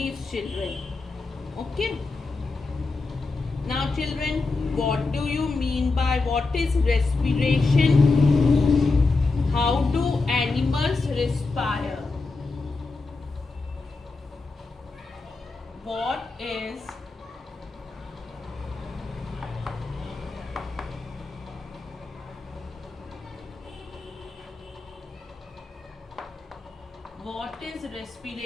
children. Okay. Now, children, what do you mean by what is respiration? How do animals respire? What is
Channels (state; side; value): quieter; right; 3.8 dB